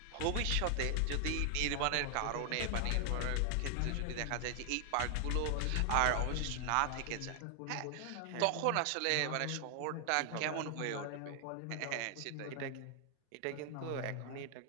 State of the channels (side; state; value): both; different; correlation 0.00